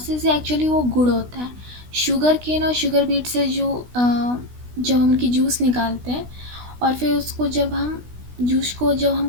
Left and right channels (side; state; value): left; late; 16 ms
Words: है एक्चुअली वो गुड़ होता है। शुगर केन और शुगर बीट से जब हम उनकी जूस निकालते हैं और फिर उसको जब हम